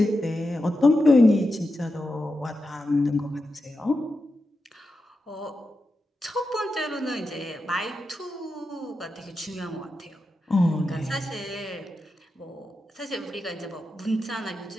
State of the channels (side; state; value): both; normal; correlation 0.89